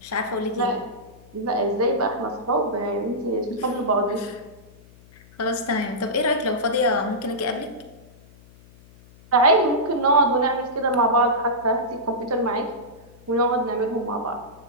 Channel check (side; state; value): left; noise; hum, 24 dB below the sound